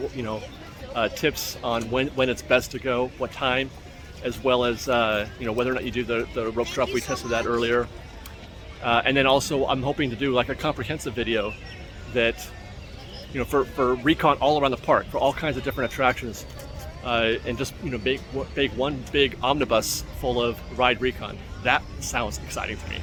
tips on when it's best to go, what time, as well as whether or not you do the rope drop. We tested that earlier, and then also I'm hoping to do like a comprehensive video that for recon all around the park, for all kinds of different attractions, and just make one big omnibus full of ride recon. That sounds exciting to me.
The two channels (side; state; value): both; identical; correlation 1.00